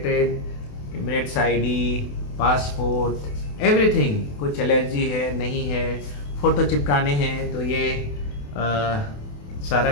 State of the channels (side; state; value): right; late; 28 ms